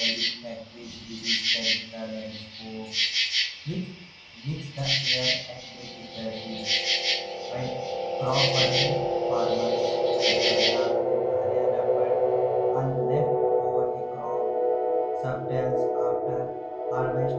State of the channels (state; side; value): identical; both; correlation 1.00